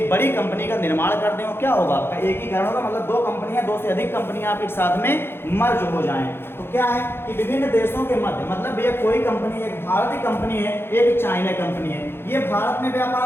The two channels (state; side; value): late; right; 0.11 ms